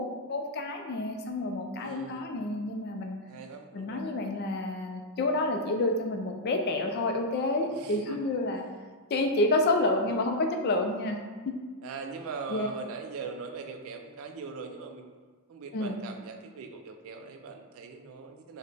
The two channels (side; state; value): both; normal; correlation -0.05